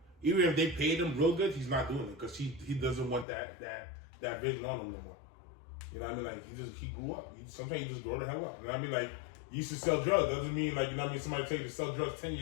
Even if they paid him real good, he's not doing it because he doesn't want that vision on him no more. You know what I mean? Like he grew up. Sometimes you just grow the hell up. You know what I mean? Like you used to sell drugs. Doesn't mean like, you know what I mean, somebody tell you to sell drugs 10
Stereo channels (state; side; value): drops out; right; at 3.2 s